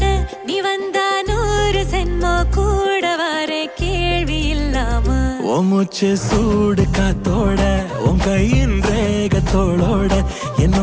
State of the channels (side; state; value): both; identical; correlation 1.00